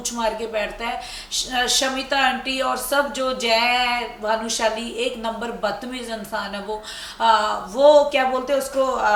मार के बैठता है। शमिता आंटी और सब जो जय भानुशाली, एक नंबर बदतमीज इंसान है वो क्या बोलते हैं उसको,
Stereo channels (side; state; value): both; identical; correlation 1.00